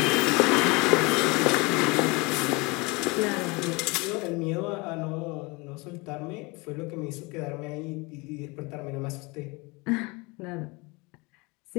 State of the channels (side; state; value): right; quieter; 26.4 dB